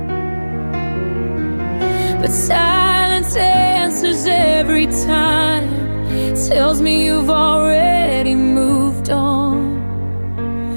But silence answers every time, tells me you've already moved on.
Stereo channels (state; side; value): inverted; both; correlation -1.00